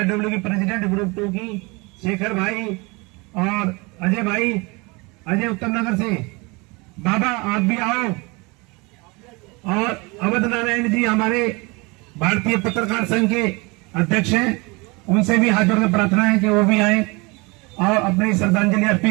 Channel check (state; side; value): quieter; left; 26.8 dB